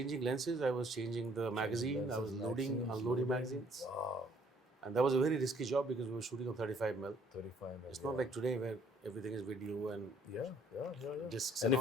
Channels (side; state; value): both; normal; correlation 0.62